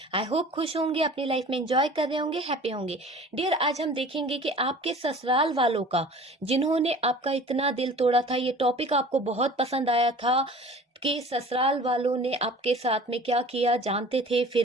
आई होप खुश होंगे, अपनी लाइफ में एंजॉय कर रहे होंगे, हैप्पी होंगे। डियर, आज हम देखेंगे कि आपके ससुराल वालों का, जिन्होंने आपका इतना दिल तोड़ा था, ये टॉपिक आपको बहुत पसंद आया था कि ससुराल वालों ने आपके साथ में क्या किया, जानते थे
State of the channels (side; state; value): both; normal; correlation 0.44